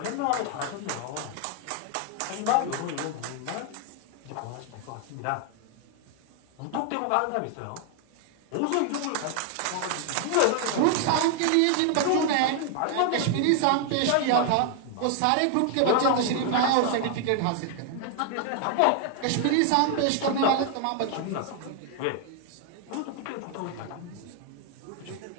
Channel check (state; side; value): different; both; correlation 0.00